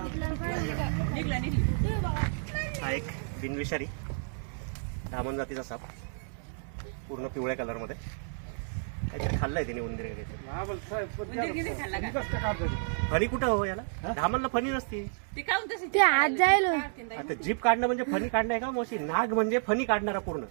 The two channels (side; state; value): left; silent; digital silence